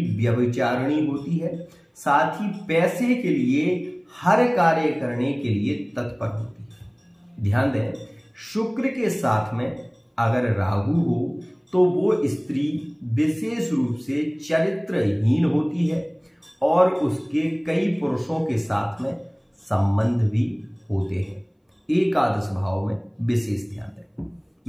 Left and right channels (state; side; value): identical; both; correlation 1.00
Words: व्यभिचारिणी होती है, साथ ही पैसे के लिए हर कार्य करने के लिए तत्पर होती है। ध्यान दें, शुक्र के साथ में अगर राहु हो तो वो स्त्री विशेष रूप से चरित्रहीन होती है और उसके कई पुरुषों के साथ में संबंध भी होते हैं। एकादश भाव में विशेष ध्यान दें।